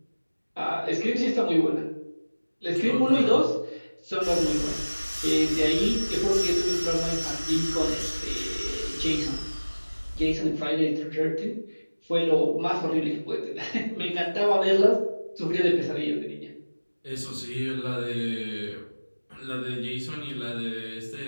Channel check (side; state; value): both; inverted; correlation -1.00